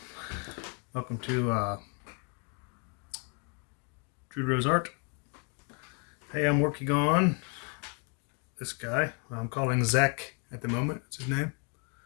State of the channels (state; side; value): quieter; right; 37.3 dB